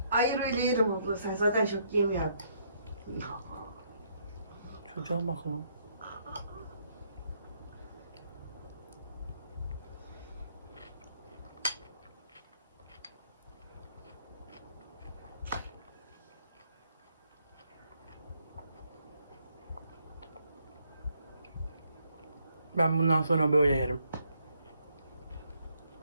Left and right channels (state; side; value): inverted; both; correlation -0.71